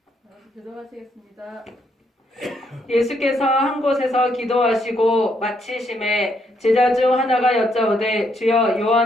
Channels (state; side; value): normal; both; correlation 0.74